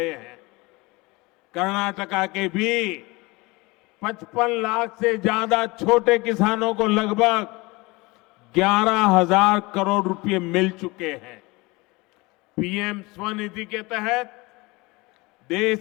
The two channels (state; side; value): quieter; right; 24.0 dB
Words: हैं। कर्नाटका के भी 55 लाख से ज्यादा छोटे किसानों को लगभग 11,000 करोड़ रुपए मिल चुके हैं। पीएम स्वनिधि के तहत देश